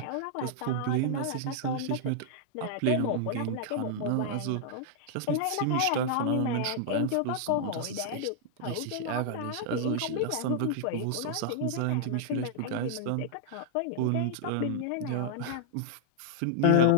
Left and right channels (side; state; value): both; different; correlation -0.01